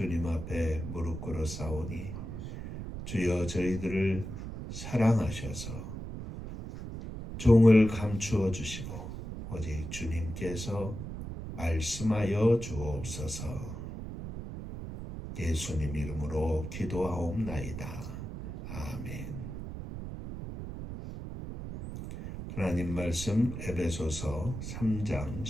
앞에 무릎 꿇어 싸우니 주여 저희들을 사랑하셔서 종을 감추어 주시고 오직 주님께서 말씀하여 주옵소서. 예수님 이름으로 기도하옵나이다. 아멘. 하나님 말씀 에베소서 3장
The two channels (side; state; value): right; noise; rumble, 8 dB below the sound